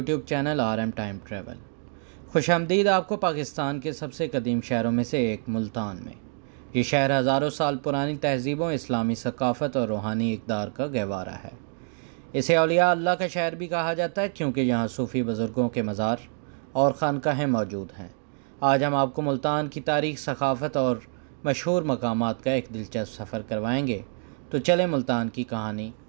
channel RM time travel. खुशामदीद आपको पाकिस्तान के सबसे कदीम शहरों में से एक मुल्तान में। ये शहर हज़ारों साल पुरानी तहजीबों, इस्लामी सकाफ़त और रूहानी इक़दार का गहवारा है। इसे औलिया अल्लाह का शहर भी कहा जाता है क्योंकि यहाँ सूफ़ी बुज़ुर्गों के मज़ार और खानकाहें मौजूद हैं। आज हम आपको मुल्तान की तारीख़, सकाफ़त और मशहूर मकामात का एक दिलचस्प सफ़र करवाएंगे। तो चलें मुल्तान की कहानी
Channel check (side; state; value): left; silent; 60 dB below the other